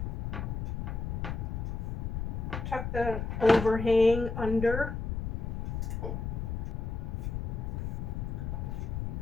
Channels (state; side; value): noise; left; rumble, 2 dB below the sound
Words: Tuck the overhang under.